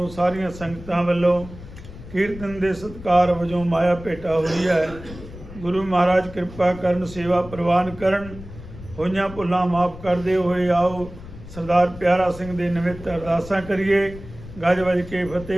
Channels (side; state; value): left; noise; rumble, 15 dB below the sound